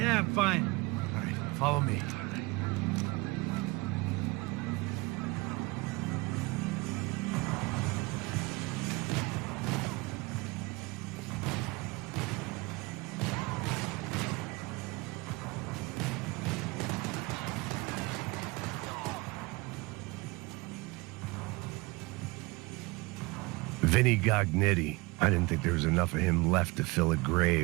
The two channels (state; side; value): quieter; left; 24.3 dB